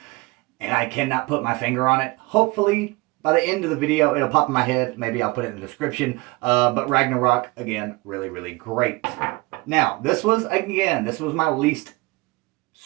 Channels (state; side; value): quieter; left; 24.0 dB